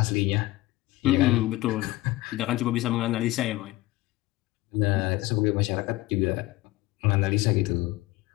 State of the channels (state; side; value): quieter; right; 18.7 dB